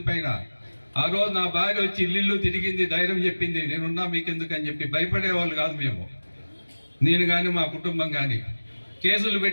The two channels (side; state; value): both; inverted; correlation -1.00